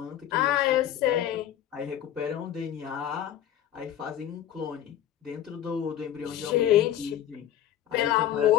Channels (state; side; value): quieter; right; 11.3 dB